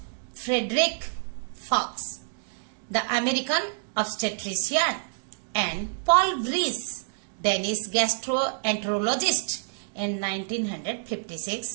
Frederick Fox, the American obstetrician, and Paul Vrees, Danish gastroenterologist, in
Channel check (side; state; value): left; silent; digital silence